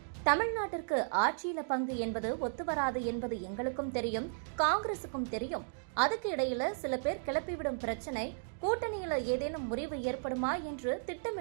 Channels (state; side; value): silent; left; digital silence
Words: தமிழ்நாட்டிற்கு ஆட்சியில பங்கு என்பது ஒத்துவராது என்பது எங்களுக்கும் தெரியும், காங்கிரசுக்கும் தெரியும். அதுக்கு இடையில சில பேர் கிளப்பிவிடும் பிரச்சனை, கூட்டணியில ஏதேனும் முறிவு ஏற்படுமா என்று